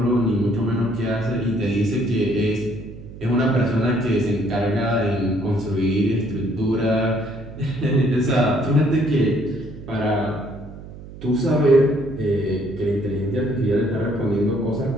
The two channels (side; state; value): right; noise; hum, 15 dB below the sound